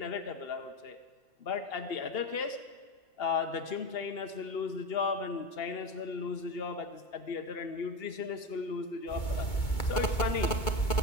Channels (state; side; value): late; right; 2.2 ms